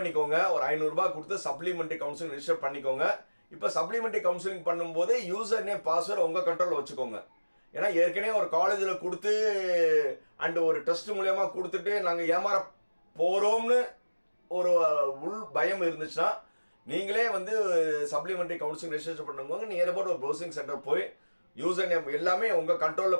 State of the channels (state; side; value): inverted; both; correlation -1.00